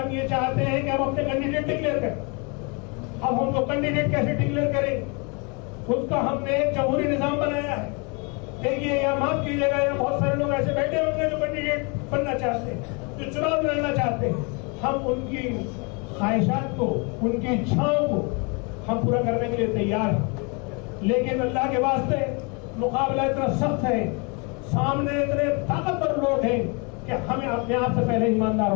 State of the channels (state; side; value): quieter; right; 32.2 dB